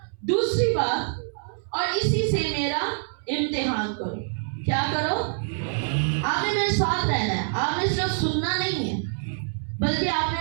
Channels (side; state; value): left; silent; 61 dB below the other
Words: दूसरी बात, और इसी से मेरा इम्तिहान करो। क्या करो? आपने मेरे साथ रहना है, आपने सिर्फ सुनना नहीं है बल्कि